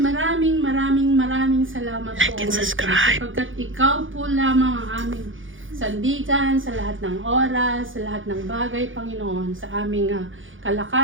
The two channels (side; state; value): left; late; 0.57 ms